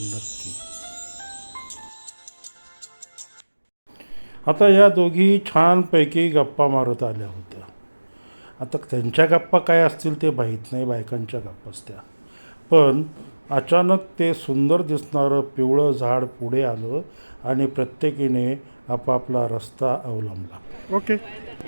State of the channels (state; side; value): inverted; both; correlation -1.00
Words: नक्की. आता या दोघी छानपैकी गप्पा मारत आल्या होत्या. आता त्यांच्या गप्पा काय असतील ते माहीत नाही, बायकांच्या गप्पाच त्या. पण अचानक ते सुंदर दिसणारं पिवळं झाड पुढे आलं आणि प्रत्येकीने आपापला रस्ता अवलंबला. ओके,